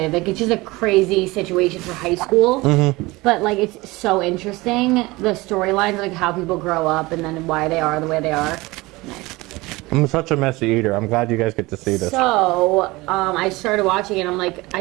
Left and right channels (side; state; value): left; quieter; 21.6 dB